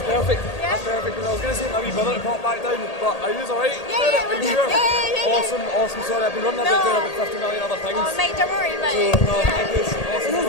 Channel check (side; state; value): right; late; 1.8 ms